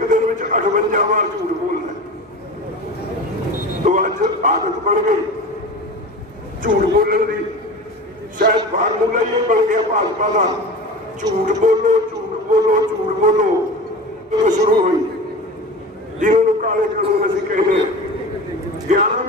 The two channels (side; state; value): both; normal; correlation 0.33